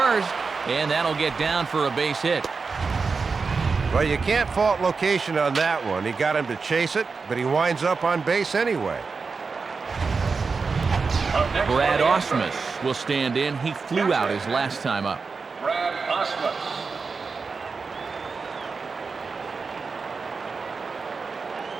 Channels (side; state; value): left; quieter; 4.7 dB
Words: and that'll get down for a base hit. Well, you can't fault location on that one. He got him to chase it, but he winds up on base anyway. Brad Osmus will stand in. He flew out his last time up. Brad Osmus.